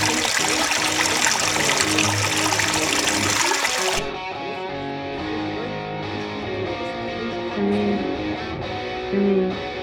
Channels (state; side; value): identical; both; correlation 1.00